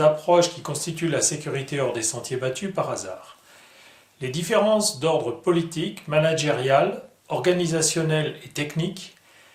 qui constituent la sécurité hors des sentiers battus par hasard. Les différences d'ordre politique, managérial, organisationnel et technique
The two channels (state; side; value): identical; both; correlation 1.00